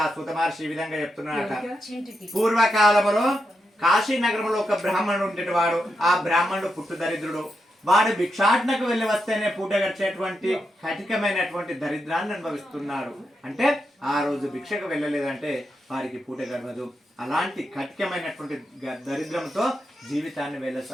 ఆ సూత మహర్షి ఈ విధంగా చెప్తున్నాడట. పూర్వకాలములో కాశీ నగరంలో ఒక బ్రాహ్మణుడు ఉండేవాడు. ఆ బ్రాహ్మణుడు పుట్టు దరిద్రుడు. వాడు భిక్షాటనకు వెళ్ళి వస్తేనే పూట గడిచేటువంటి కఠికమైనటువంటి దరిద్రాన్ని అనుభవిస్తున్నాడు. అంటే ఆ రోజు భిక్షకు వెళ్ళలేదంటే వారికి పూట గడవదు. అలాంటి కఠికమైనటువంటి దరిద్రంతో జీవితాన్ని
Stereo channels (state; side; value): normal; both; correlation 0.85